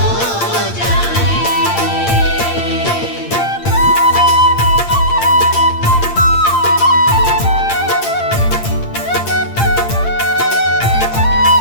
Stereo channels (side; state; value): right; late; 8.7 ms